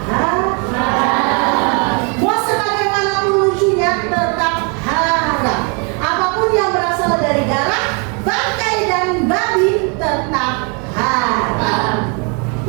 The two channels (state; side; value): quieter; left; 35.1 dB